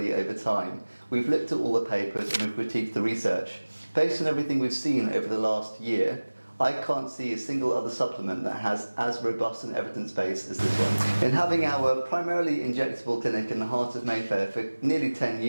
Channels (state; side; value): inverted; both; correlation -1.00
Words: over time. We've looked at all the papers and we've critiqued the research. Based on everything we've seen over the last year, I can't see a single other supplement that has as robust an evidence base as this one. In having our primarily injectable clinic in the heart of Mayfair for nearly 10